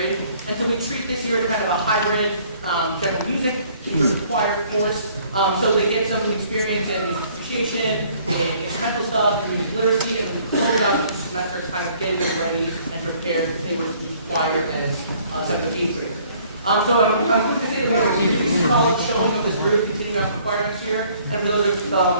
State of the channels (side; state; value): both; inverted; correlation -0.59